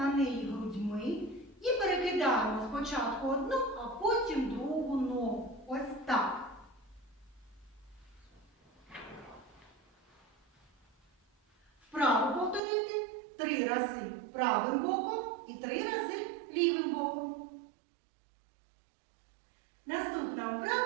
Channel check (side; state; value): left; drops out; at 12.6 s